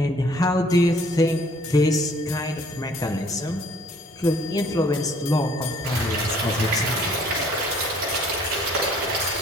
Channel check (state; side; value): normal; both; correlation 0.58